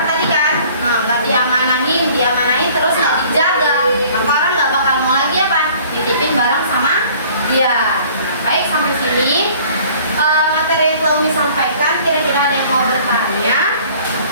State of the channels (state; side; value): inverted; both; correlation -0.52